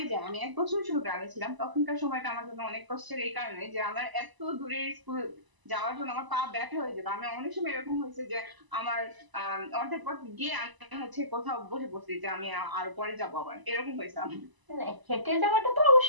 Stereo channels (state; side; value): late; left; 1.0 ms